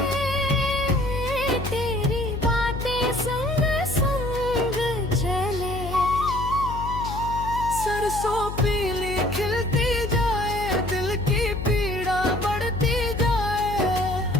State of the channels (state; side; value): noise; left; hum, 7 dB below the sound